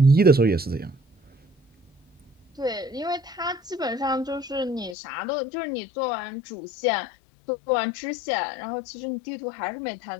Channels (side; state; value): right; drops out; at 5.0 s